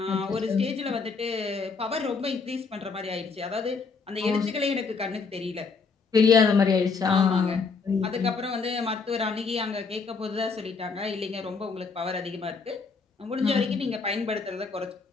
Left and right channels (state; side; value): quieter; right; 4.8 dB